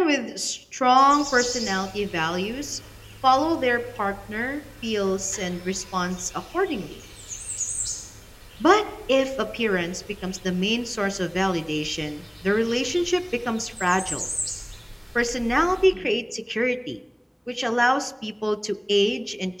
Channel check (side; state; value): both; identical; correlation 1.00